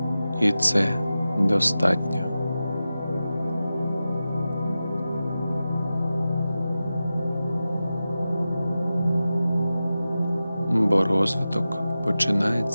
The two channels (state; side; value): inverted; both; correlation -0.93